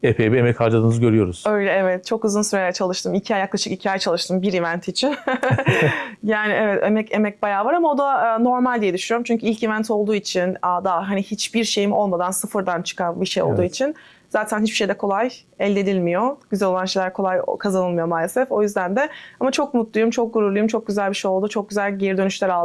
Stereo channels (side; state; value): both; identical; correlation 1.00